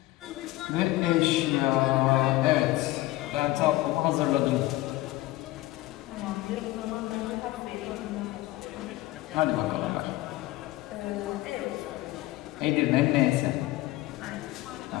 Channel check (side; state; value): right; quieter; 17.6 dB